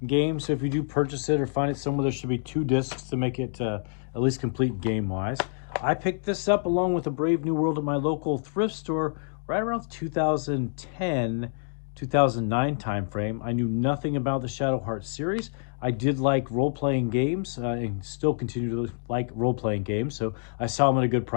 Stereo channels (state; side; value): silent; right; digital silence